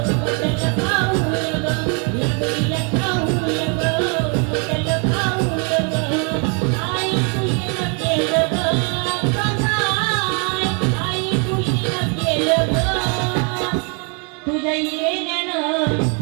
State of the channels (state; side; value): quieter; left; 36.2 dB